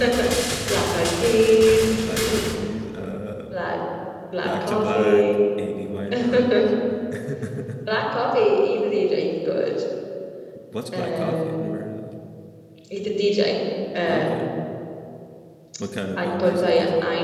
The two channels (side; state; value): both; identical; correlation 1.00